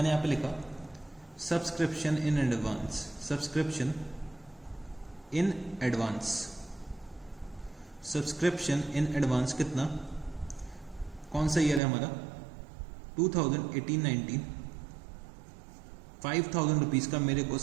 यहाँ पे लिखा सब्सक्रिप्शन इन एडवांस कितना, कौन सा ईयर है हमारा, 2018-19, 5,000 रुपीज़ का मेरे को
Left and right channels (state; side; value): drops out; left; at 11.8 s